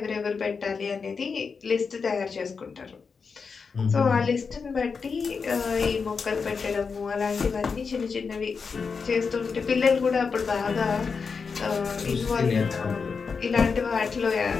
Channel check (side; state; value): right; quieter; 5.3 dB